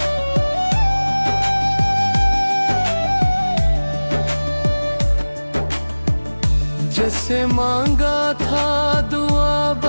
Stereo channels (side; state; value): both; inverted; correlation -1.00